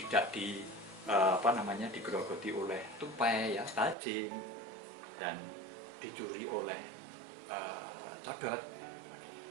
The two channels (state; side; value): drops out; left; at 4.0 s